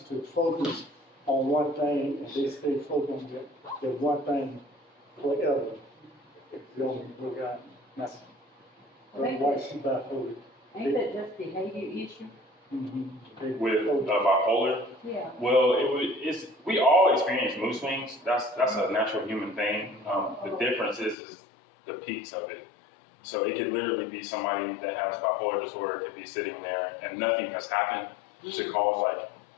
to focus on one thing and they stay focused on that one thing forever. If you only look at that's why she bipolar. Ain't that just behavior issue? With bipolar? Yeah. Well, we all experience mood swings. That's a natural human thing. The difference is the peaks of it. So it could literally be somebody that has bipolar disorder could be sitting there and nothing has happened to cause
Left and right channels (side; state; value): right; drops out; at 21.2 s